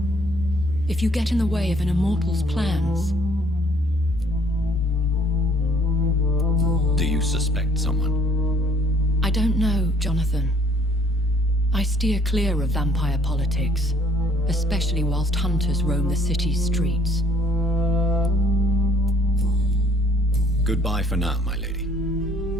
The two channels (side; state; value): both; normal; correlation 0.61